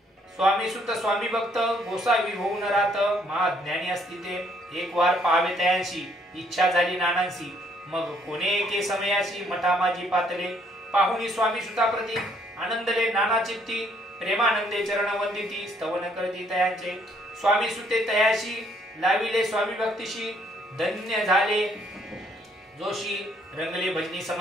स्वामी सुत स्वामी भक्त गोसावी होऊन राहत महाज्ञानी असती ते एक वार पाहावे तयांशी इच्छा झाली नानांशी मग कोणे एके समयाशी मठा माझी पातले पाहुणी स्वामी सुताप्रती आनंदले नाना चित्ती प्रेमानंदे चरण वंदिती स्तवन करती तयांचे स्वामी सुते तयाशी लाविले स्वामी भक्तीशी धन्य झाले जोशी रंगले भजनी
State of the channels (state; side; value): normal; both; correlation 0.67